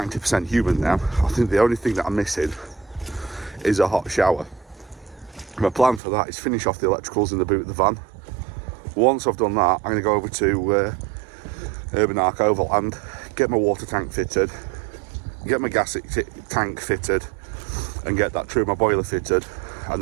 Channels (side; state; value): left; drops out; at 6.0 s